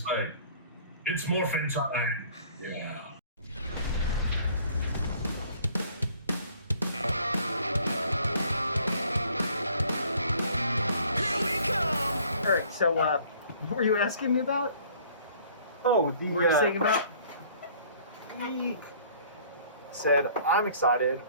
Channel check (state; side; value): inverted; both; correlation -0.55